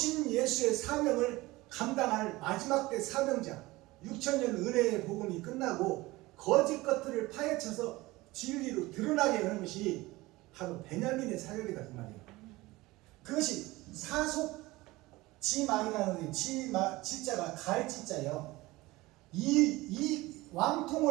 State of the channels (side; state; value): left; quieter; 20.2 dB